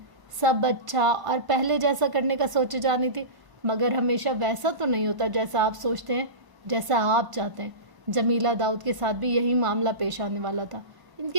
سب اچھا اور پہلے جیسا کرنے کا سوچے جانی تھی، مگر ہمیشہ ویسا تو نہیں ہوتا جیسا آپ سوچتے ہیں، جیسا آپ چاہتے ہیں۔ جمیلہ داؤد کے ساتھ بھی یہی معاملہ پیش آنے والا تھا۔ ان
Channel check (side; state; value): left; late; 1.0 ms